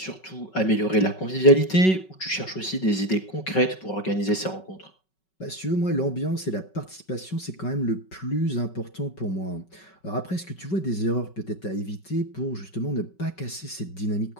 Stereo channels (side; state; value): right; late; 5.3 ms